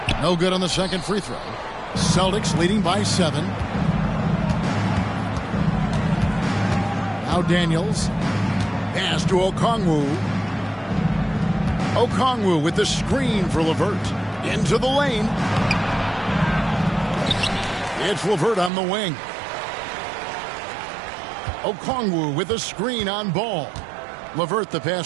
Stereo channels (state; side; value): drops out; left; at 18.7 s